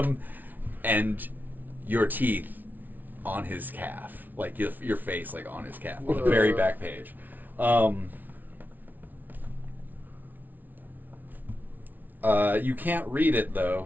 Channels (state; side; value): late; left; 0.082 ms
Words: and your teeth on his calf, like your face, like on his calf, on the very back page. You can't read it